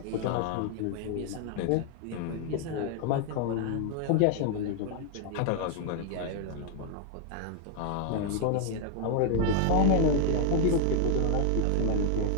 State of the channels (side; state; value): both; different; correlation 0.00